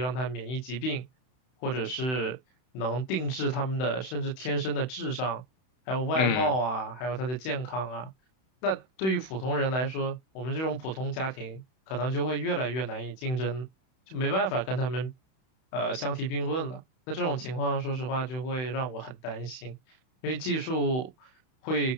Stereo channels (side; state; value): right; late; 31 ms